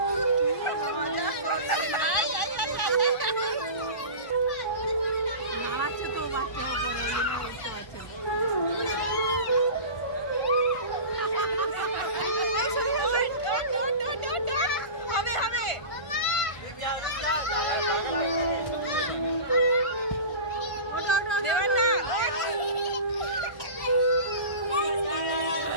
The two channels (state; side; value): late; right; 1.4 ms